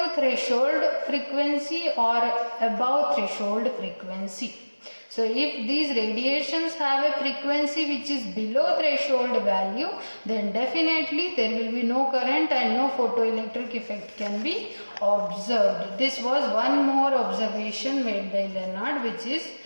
threshold frequency or above threshold frequency. So if these radiations have a frequency which is below threshold value, then definitely there will be no current and no photoelectric effect can be observed. This was one more observation made by Lenard, which is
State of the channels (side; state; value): both; inverted; correlation -1.00